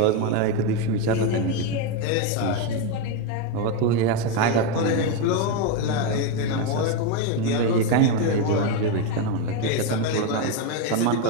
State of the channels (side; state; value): both; different; correlation 0.03